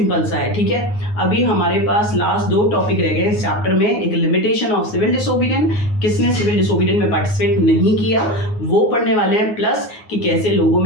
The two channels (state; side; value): late; right; 9.5 ms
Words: सा है। ठीक है, अभी हमारे पास लास्ट 2 टॉपिक रह गए इस चैप्टर में। एक लिमिटेशन ऑफ सिविल डिसोबीडियंस, किसने सिविल डिसोबीडियंस में पार्टिसिपेट नहीं किया वो पढ़ने वाले हैं, प्लस कि कैसे लोगों